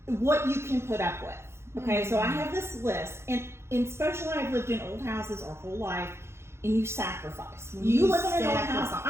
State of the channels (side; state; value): left; late; 0.12 ms